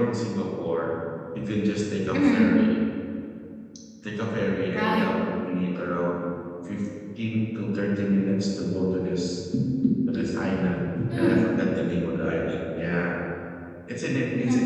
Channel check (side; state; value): both; identical; correlation 1.00